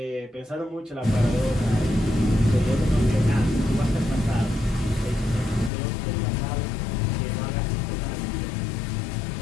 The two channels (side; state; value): right; drops out; at 5.7 s